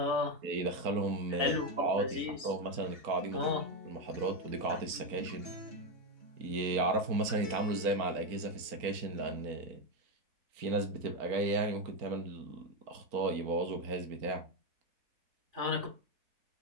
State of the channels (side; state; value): left; late; 4.4 ms